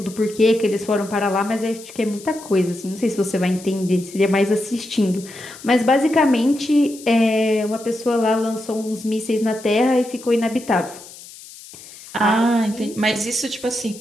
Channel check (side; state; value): left; noise; hiss, 18 dB below the sound